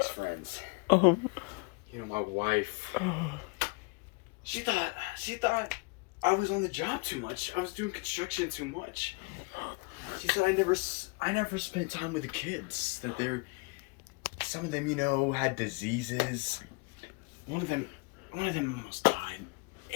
friends. My wife. She thought I was on the job too much. I was doing construction too much. She said I never spent time with the kids. That some of them, had diseases. One of them almost died.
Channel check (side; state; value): right; quieter; 29.7 dB